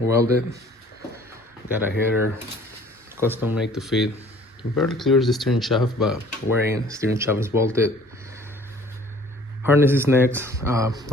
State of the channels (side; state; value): both; normal; correlation 0.53